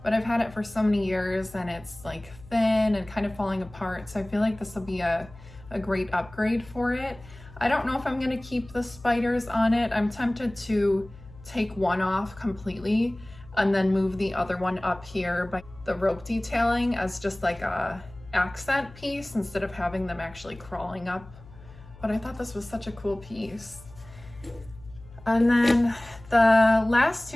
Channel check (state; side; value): noise; left; hum, 20 dB below the sound